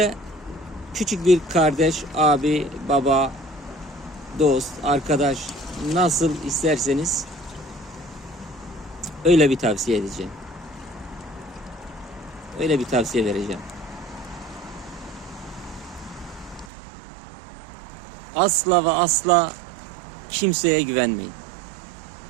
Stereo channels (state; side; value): drops out; left; at 16.7 s